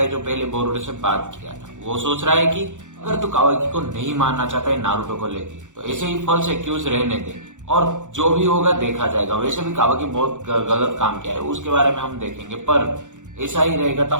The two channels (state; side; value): late; left; 0.86 ms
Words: है जो पहले बोरुटो से बात किया था। वो सोच रहा है कि अगर तू कावाकी को नहीं मारना चाहता है नारुतो को लेके तो ऐसे ही फॉल्स एक्यूज रहने दे और जो भी होगा देखा जाएगा। वैसे भी कावाकी बहुत गलत काम किया है, उसके बारे में हम देखेंगे, पर ऐसा ही रहेगा तो